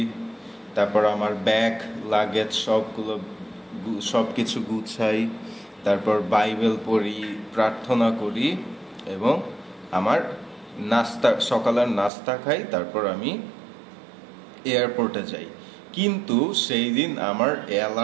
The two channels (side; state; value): left; drops out; at 12.1 s